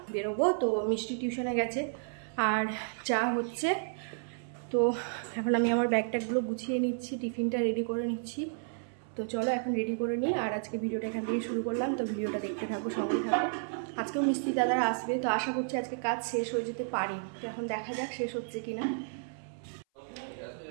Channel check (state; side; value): silent; left; 56 dB below the other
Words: বেরোবো। তো মিষ্টি টিউশনে গেছে আর চা হচ্ছে। তো এখন আমি আমার ব্যাগট্যাগুলো গুছিয়ে নিচ্ছি, টিফিনটা রেডি করে নিচ্ছি। তো চলো এখন রেডি করে নিই। আর আজকে ভিডিওটা এখান থেকে শুরু করলাম, তো ভিডিওটা দেখতে থাকো, সঙ্গেই থাকো। আজকেও মিস্ত্রি দাদারা আসবে, তো আশা করছি আজকে কাজ শেষ হয়ে যেতে পারি। তো এখন দেখা যাক শেষ হচ্ছে কিনা।